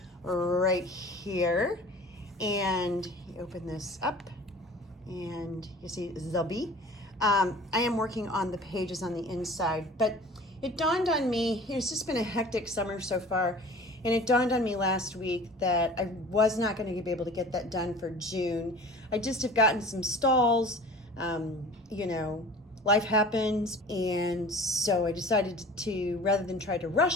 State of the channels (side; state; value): both; normal; correlation 0.42